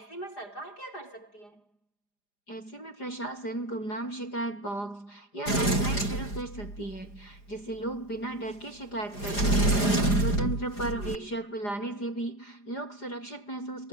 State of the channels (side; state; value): right; late; 4.9 ms